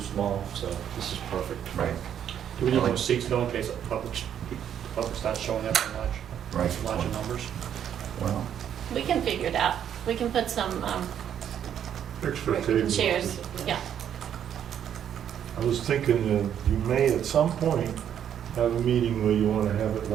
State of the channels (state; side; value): quieter; left; 9.4 dB